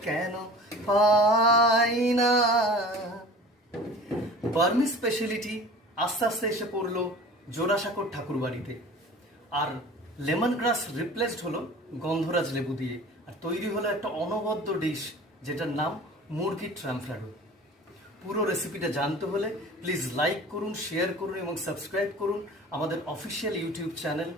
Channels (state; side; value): normal; both; correlation 0.42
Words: কেন পাই না। বার্মি স্পেশালিটি আস্তে আস্তে এসে পড়লো জোড়াসাঁকোর ঠাকুরবাড়িতে, আর লেমন গ্রাস রিপ্লেসড হলো গন্ধরাজ লেবু দিয়ে, আর তৈরি হলো একটা অনবদ্য ডিশ যেটার নাম মুরগির ট্রাম্পলাডো। পুরো রেসিপিটা জানতে হলে প্লিজ লাইক করুন, শেয়ার করুন এবং সাবস্ক্রাইব করুন আমাদের official YouTube channel